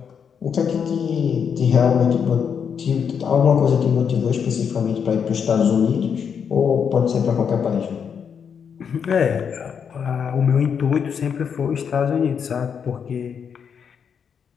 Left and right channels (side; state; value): right; quieter; 7.1 dB